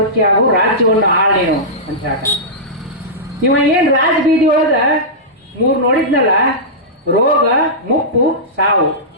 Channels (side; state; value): both; normal; correlation -0.14